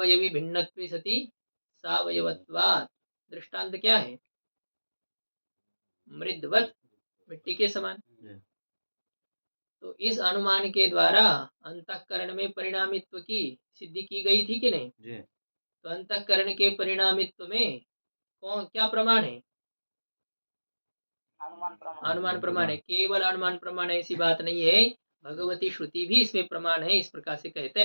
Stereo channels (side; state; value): both; inverted; correlation -1.00